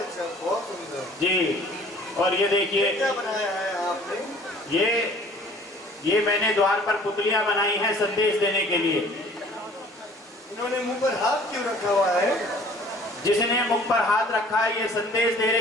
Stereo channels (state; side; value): normal; both; correlation 0.52